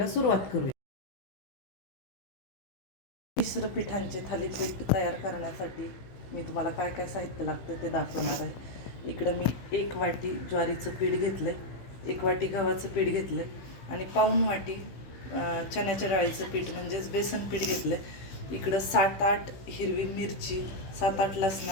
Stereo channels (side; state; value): right; late; 16 ms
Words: सुरुवात करूया. मिश्र पिठांचे थालीपीठ तयार करण्यासाठी मी तुम्हाला काय काय साहित्य लागतं ते दाखवणार आहे. इकडं मी 1 वाटी ज्वारीचं पीठ घेतलं आहे, 1 वाटी गव्हाचं पीठ घेतलं आहे आणि पाऊण वाटी चण्याच्या डाळीचं पीठ म्हणजेच बेसन पीठ घेतलं आहे. इकडं 7-8 हिरवी मिरची, 7-8